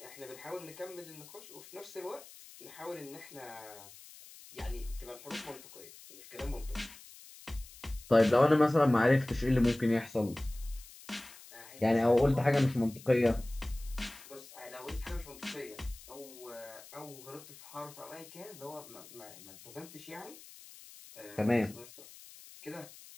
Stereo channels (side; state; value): left; noise; hiss, 19 dB below the sound